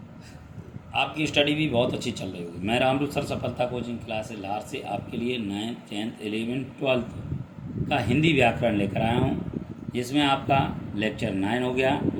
आपकी स्टडी भी बहुत अच्छी चल रही होगी। मैं रामरूप सर सफलता कोचिंग क्लास लार से आपके लिए 9th 10th 11th 12th का हिंदी व्याकरण लेकर आया हूँ, जिसमें आपका लेक्चर 9 हो गया।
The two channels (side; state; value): both; identical; correlation 1.00